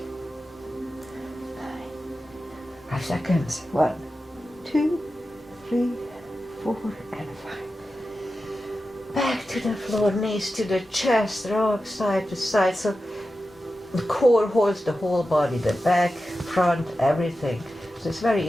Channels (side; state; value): both; normal; correlation 0.92